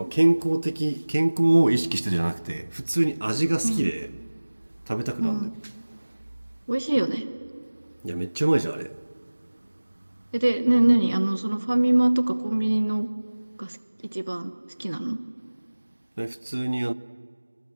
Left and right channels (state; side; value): inverted; both; correlation -1.00